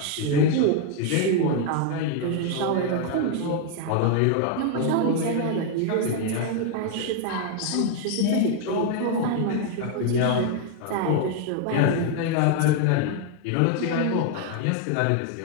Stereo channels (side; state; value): both; different; correlation 0.00